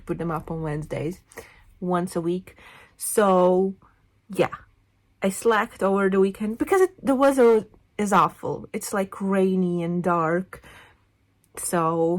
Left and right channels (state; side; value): identical; both; correlation 1.00